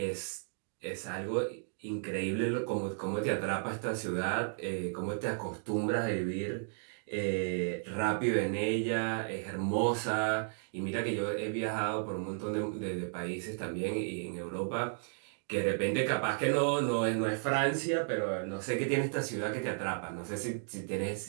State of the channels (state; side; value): silent; left; digital silence